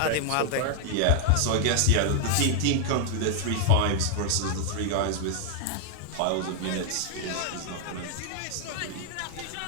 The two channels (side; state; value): both; different; correlation 0.00